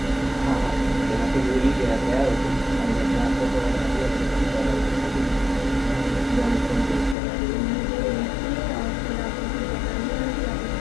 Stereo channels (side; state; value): right; drops out; at 7.2 s